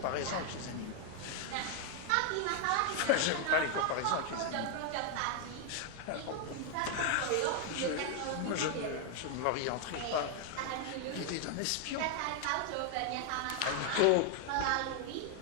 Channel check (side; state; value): both; different; correlation 0.00